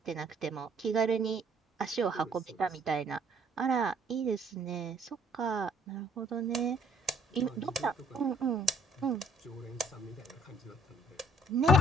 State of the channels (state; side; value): normal; both; correlation 0.61